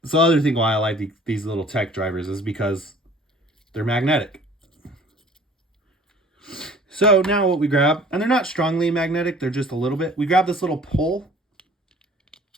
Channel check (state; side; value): normal; both; correlation 0.51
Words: so the other thing why I like these little tech drivers is because they're magnetic. So now what we grab, and they're not strongly magnetic, they're just a little bit. We grab this little pole.